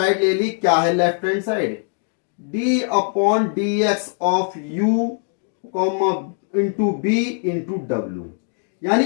ले ली। क्या है left hand side, d upon D X of u into B into W, यानी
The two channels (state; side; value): silent; right; 55 dB below the other